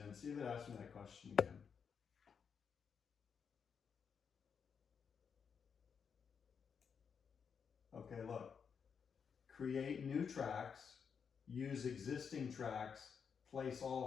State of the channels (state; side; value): quieter; right; 6.6 dB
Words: See if it asks me that question again. Okay, look. Create new tracks. Use existing tracks, place